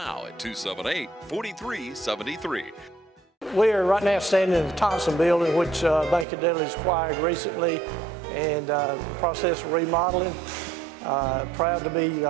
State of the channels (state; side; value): drops out; left; at 6.2 s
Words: at 278-4373. We are right now standing in the Thompson building, which Bank of Dudley's acquired recently, and the process of remodeling. Proud to be